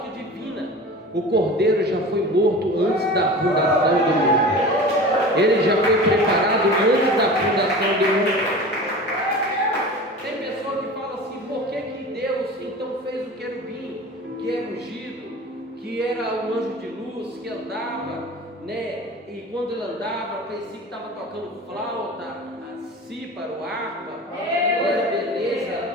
divina, o Cordeiro já foi morto antes da fundação do mundo. Ele já foi preparado antes da fundação do mundo. Tem pessoa que fala assim: por que Deus então fez o querubim, que era ungido, que era um anjo de luz, que andava, né? E quando ele andava, parecia que estava tocando flauta, cíparo, harpa, era beleza,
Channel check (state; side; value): normal; both; correlation 0.36